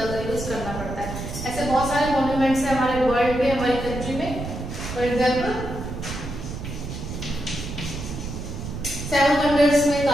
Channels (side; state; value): right; noise; rumble, 7 dB below the sound